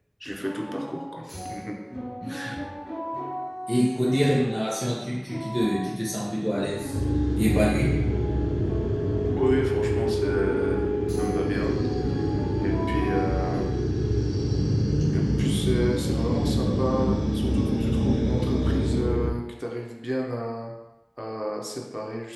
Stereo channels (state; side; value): identical; both; correlation 1.00